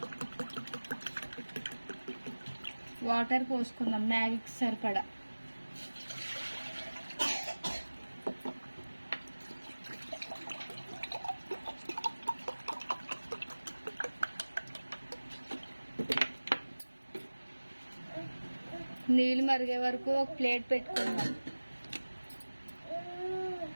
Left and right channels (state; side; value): inverted; both; correlation -1.00